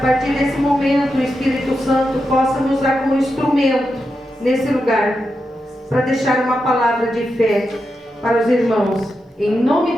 partir desse momento o Espírito Santo possa me usar como instrumento nesse lugar, para deixar uma palavra de fé para os irmãos, em nome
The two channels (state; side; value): normal; both; correlation 0.87